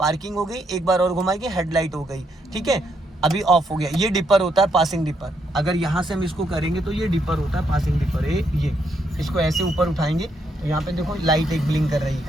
हो गई, एक बार और घुमाएंगे हेडलाइट हो गई, ठीक है। अभी ऑफ हो गया। ये डिपर होता है, पासिंग डिपर। अगर यहाँ से हम इसको करेंगे तो ये डिपर होता है, पासिंग डिपर। ये इसको ऐसे ऊपर उठाएंगे यहाँ पे देखो लाइट एक ब्लिंक कर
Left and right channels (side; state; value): both; normal; correlation 0.76